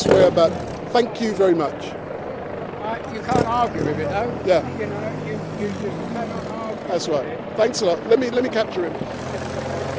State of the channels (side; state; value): both; identical; correlation 1.00